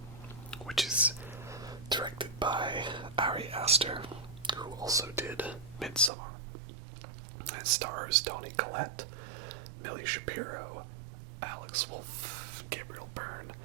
which is directed by Ari Aster, who also did Midsommar. It stars Toni Collette, Millie Shapiro, Alex Wolff, Gabriel Byrne,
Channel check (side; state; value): left; drops out; at 6.1 s